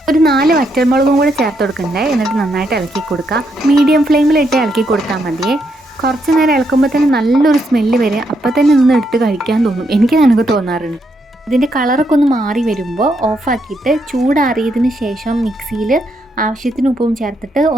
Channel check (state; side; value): normal; both; correlation 0.78